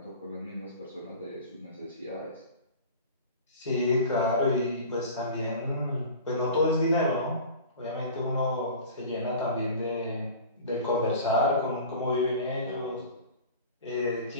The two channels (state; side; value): inverted; both; correlation -0.38